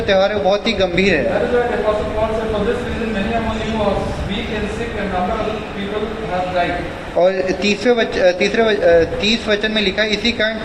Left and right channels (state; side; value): identical; both; correlation 1.00